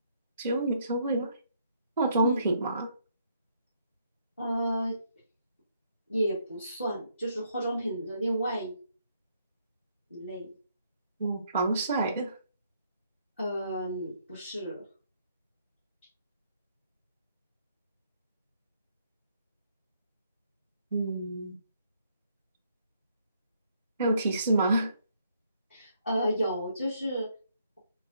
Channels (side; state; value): both; inverted; correlation -0.71